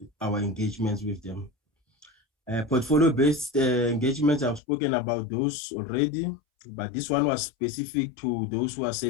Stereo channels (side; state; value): right; drops out; at 4.6 s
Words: our engagements with them. Portfolio-based engagements, I've spoken about those already, but this one was specific to those who are